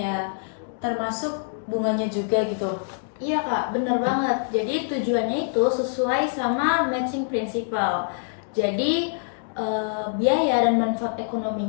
termasuk bunganya juga gitu. Iya Kak, bener banget. Jadi tujuannya itu sesuai sama matching principle. Jadi biaya dan manfaat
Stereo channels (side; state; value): right; silent; digital silence